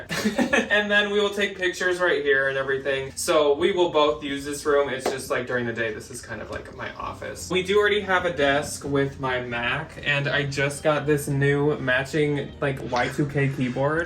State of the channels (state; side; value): identical; both; correlation 1.00